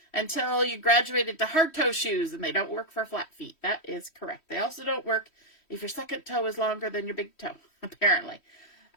until you graduated to hard toe shoes, and they don't work for flat feet. That is correct. They also don't work if your second toe is longer than your big toe, apparently.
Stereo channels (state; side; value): late; right; 3.1 ms